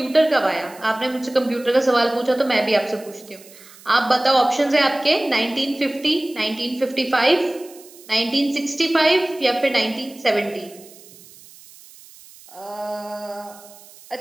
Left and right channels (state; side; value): noise; right; hiss, 22 dB below the sound